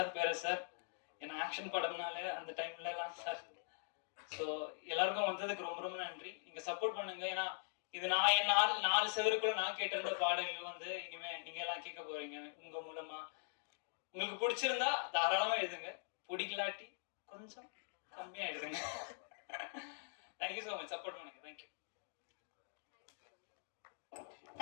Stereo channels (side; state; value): right; silent; digital silence